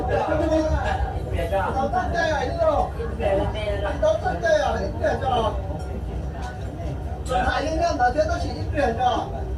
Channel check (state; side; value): identical; both; correlation 1.00